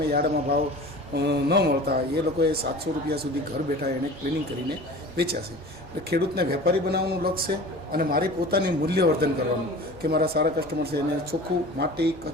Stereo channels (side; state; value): both; normal; correlation 0.39